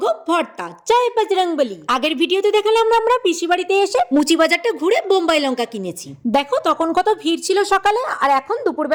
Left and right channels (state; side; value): identical; both; correlation 1.00